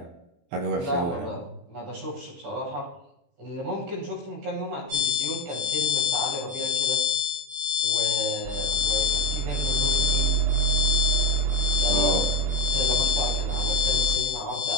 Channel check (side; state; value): left; late; 23 ms